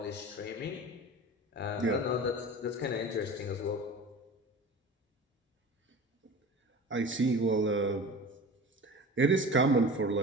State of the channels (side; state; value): both; normal; correlation 0.36